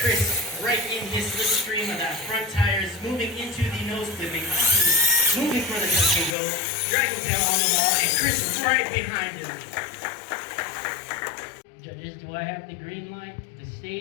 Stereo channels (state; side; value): drops out; right; at 6.4 s